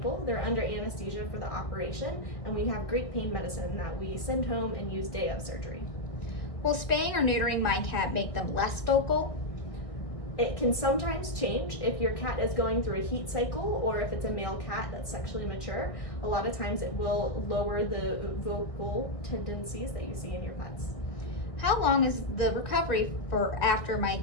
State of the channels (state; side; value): late; right; 1.7 ms